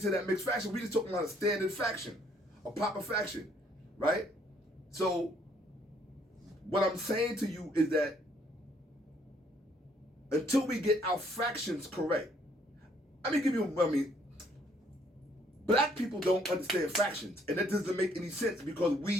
to that mixed fraction, we just talking about a standard fraction, a proper fraction, right? So, what I'm saying to you is that until we get our fractions correct, black people don't understand fractions, and that doesn't make any sense because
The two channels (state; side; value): normal; both; correlation 0.65